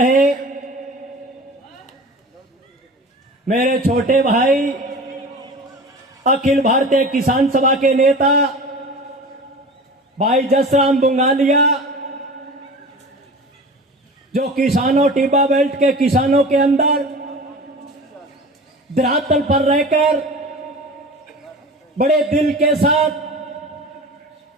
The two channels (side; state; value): both; normal; correlation 0.36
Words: मेरे छोटे भाई अखिल भारतीय किसान सभा के नेता भाई जसराम बुंगालिया, जो किसानों टिब्बा बेल्ट के किसानों के अंदर धरातल पर रहकर बड़े दिल के